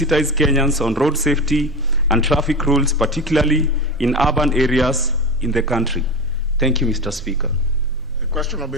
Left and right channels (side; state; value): both; normal; correlation 0.24